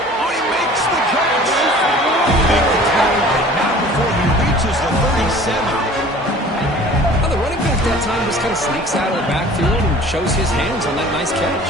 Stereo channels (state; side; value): normal; both; correlation 0.47